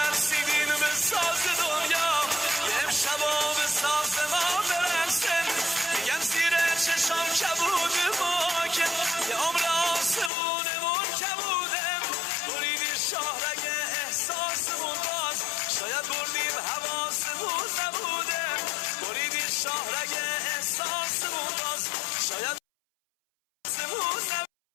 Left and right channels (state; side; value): drops out; right; at 10.3 s